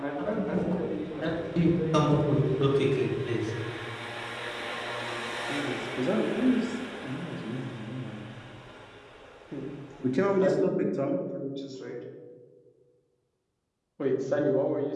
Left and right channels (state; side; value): identical; both; correlation 1.00